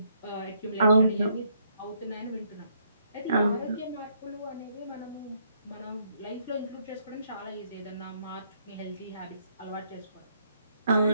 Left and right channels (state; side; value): inverted; both; correlation -0.71